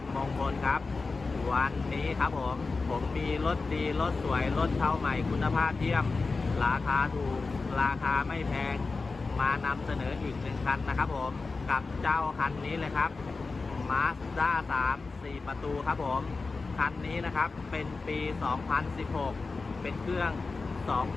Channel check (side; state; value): right; quieter; 4.0 dB